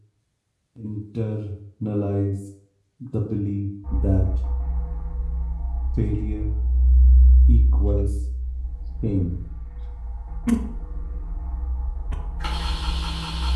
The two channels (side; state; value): both; identical; correlation 1.00